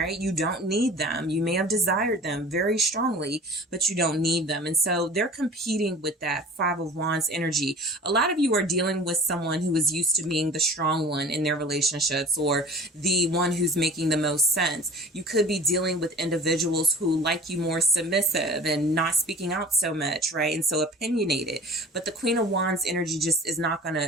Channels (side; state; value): both; normal; correlation 0.42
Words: You don't need them. You may have desired them very strongly, but you don't need them. And so they're competing with that Five of Wands energy. A lot of you are dealing with someone who is used to being the strong one in their relationships, or the one who's making the most sense. You could be dealing with individuals who like you more submissive and not speaking out so much, right? And so opinionated. But the Queen of Wands energy just is not going